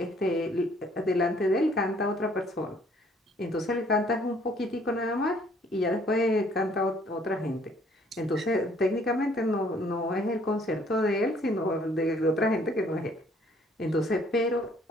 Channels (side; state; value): both; normal; correlation 0.61